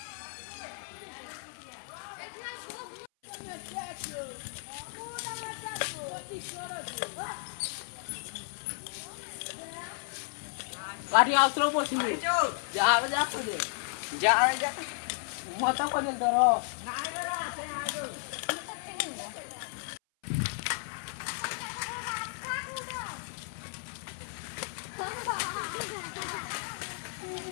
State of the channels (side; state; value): right; silent; 55 dB below the other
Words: गाडी आउतरो बसिबे जा जा पडे जा जा मत पडे दरो